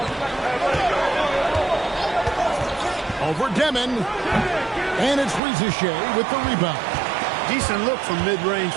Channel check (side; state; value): left; drops out; at 5.4 s